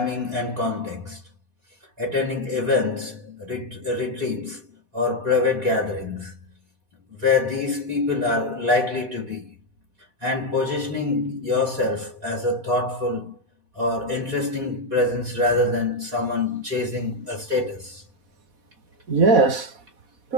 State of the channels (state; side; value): late; left; 4.1 ms